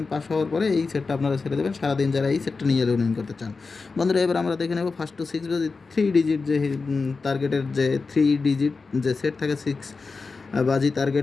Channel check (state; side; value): quieter; right; 4.3 dB